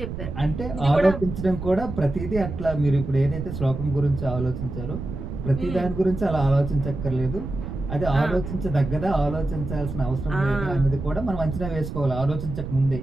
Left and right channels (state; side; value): noise; right; rumble, 7 dB below the sound